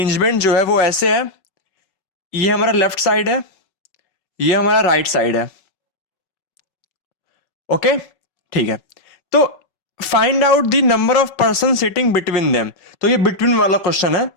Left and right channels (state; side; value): late; right; 5.4 ms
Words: जो है वो ऐसे है। ये हमारा लेफ्ट साइड है, ये हमारा राइट साइड है। ओके, ठीक है। तो find out the number of person sitting between them. तो ये बिटवीन वाला क्वेश्चन है,